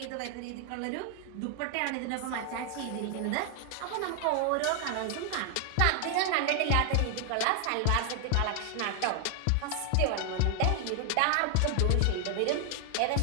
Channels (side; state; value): both; different; correlation 0.00